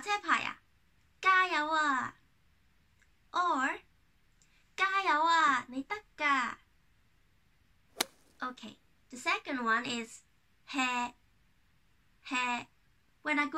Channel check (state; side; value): identical; both; correlation 1.00